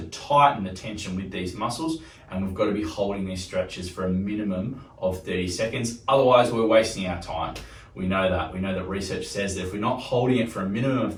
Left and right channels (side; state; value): both; identical; correlation 1.00